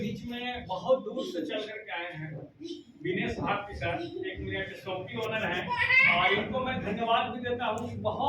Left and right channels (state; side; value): identical; both; correlation 1.00